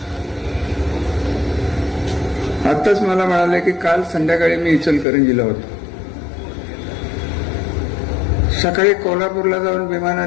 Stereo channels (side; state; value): right; drops out; at 5.1 s